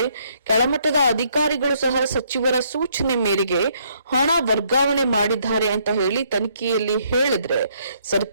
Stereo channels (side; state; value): both; inverted; correlation -0.69